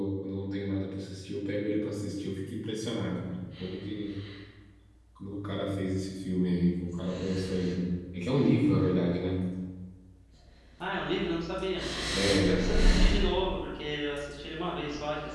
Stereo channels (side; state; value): both; identical; correlation 1.00